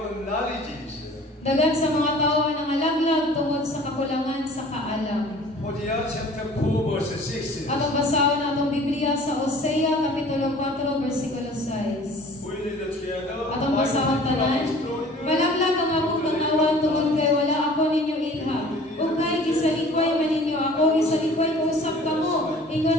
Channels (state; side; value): normal; both; correlation 0.48